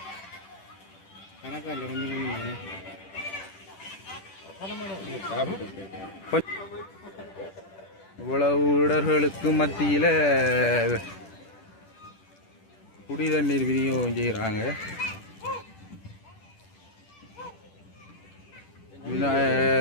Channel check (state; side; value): late; right; 10 ms